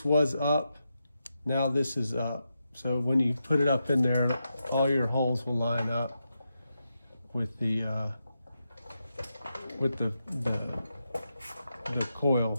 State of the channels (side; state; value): both; inverted; correlation -0.86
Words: was up, now this is up. So when you put it up in there, all your holes will line up with the